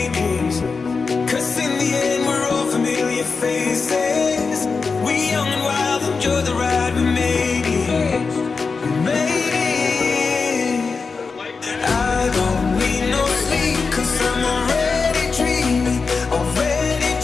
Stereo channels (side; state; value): right; quieter; 4.7 dB